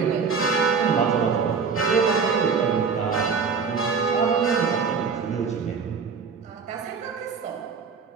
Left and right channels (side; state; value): left; quieter; 5.5 dB